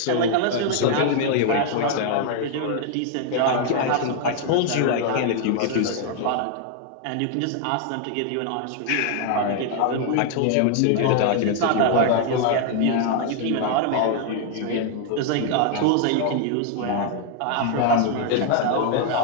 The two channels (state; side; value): different; both; correlation 0.00